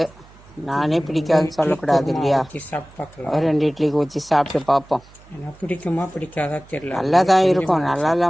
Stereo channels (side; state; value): right; noise; hum, 25 dB below the sound